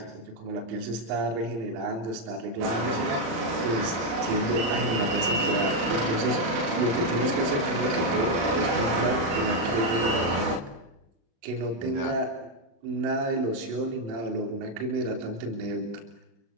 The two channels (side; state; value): left; late; 35 ms